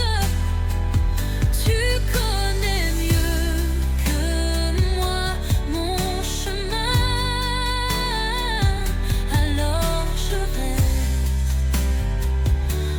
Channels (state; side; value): identical; both; correlation 1.00